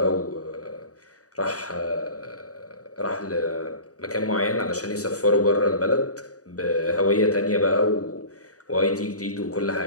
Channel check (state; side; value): late; right; 0.66 ms